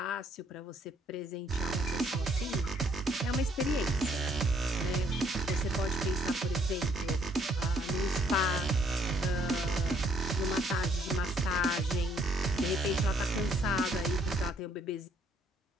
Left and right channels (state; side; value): normal; both; correlation 0.65